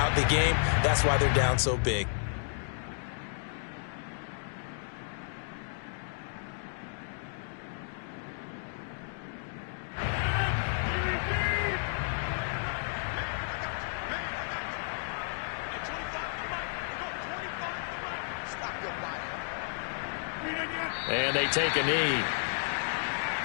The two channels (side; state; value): right; silent; digital silence